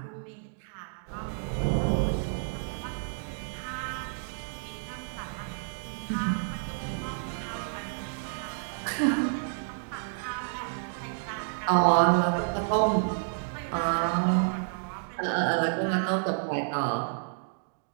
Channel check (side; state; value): left; silent; digital silence